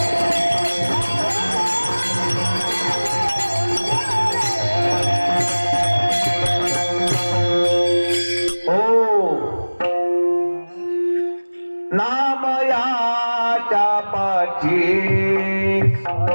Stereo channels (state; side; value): inverted; both; correlation -1.00